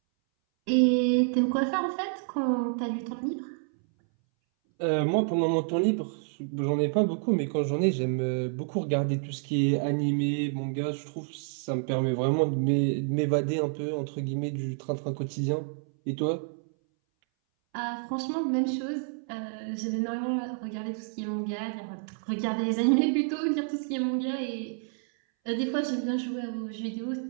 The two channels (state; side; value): silent; left; 59 dB below the other